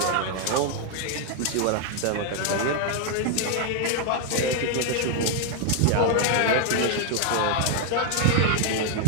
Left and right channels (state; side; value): different; both; correlation 0.00